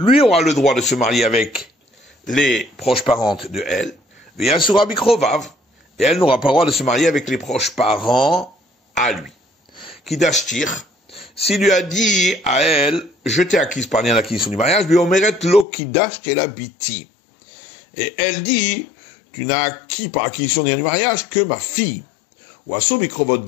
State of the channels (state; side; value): drops out; right; at 15.7 s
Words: aura le droit de se marier avec les proches parentes de elle, et elle n'aura pas le droit de se marier avec les proches parents à lui. Kidashtir, s'il lui a dit à elle, je t'ai acquise par lien d'acquisition du mariage, et elle dit, tu n'as acquis par acquisition du mariage que ma fille. Ou Asobikrovot